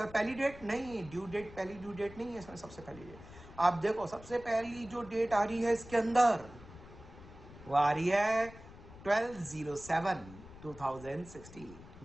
पहली डेट नहीं, ड्यू डेट पहली ड्यू डेट नहीं है इसमें, सबसे पहली डेट आप देखो, सबसे पहली जो डेट आ रही है इसके अंदर वो आ रही है 12/07/2016,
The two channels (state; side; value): noise; left; rumble, 17 dB below the sound